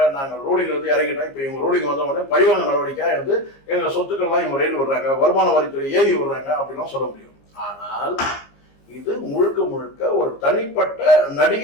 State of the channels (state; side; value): late; right; 15 ms